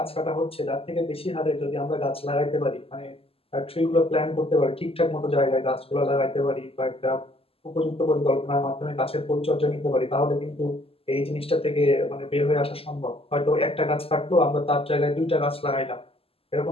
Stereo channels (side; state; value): right; late; 0.28 ms